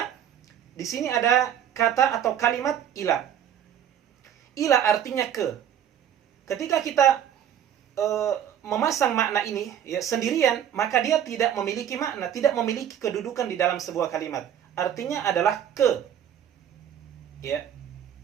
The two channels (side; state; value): left; quieter; 9.7 dB